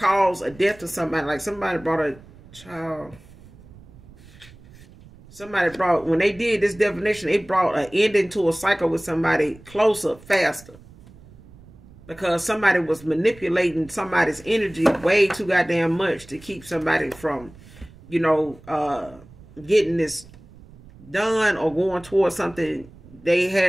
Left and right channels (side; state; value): right; noise; rumble, 22 dB below the sound